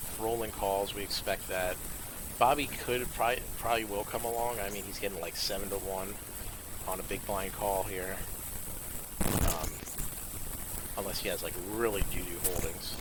Rolling calls. We expect that. Bobby could probably will come along. I mean, he's getting like 7-1 on a big blind call here. Unless he has like really doo-doo holdings,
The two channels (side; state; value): both; identical; correlation 1.00